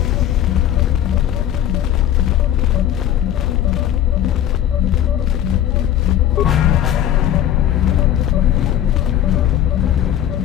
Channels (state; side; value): quieter; right; 11.1 dB